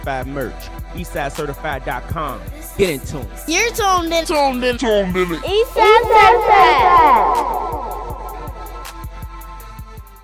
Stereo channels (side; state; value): both; identical; correlation 1.00